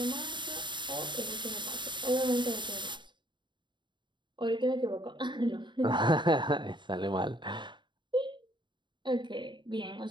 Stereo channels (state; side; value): late; left; 0.23 ms